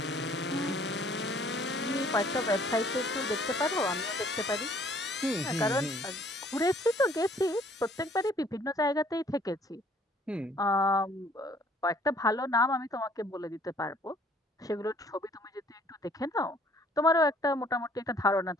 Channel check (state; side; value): normal; both; correlation 0.59